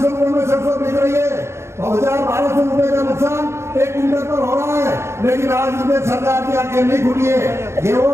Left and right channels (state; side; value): late; left; 0.13 ms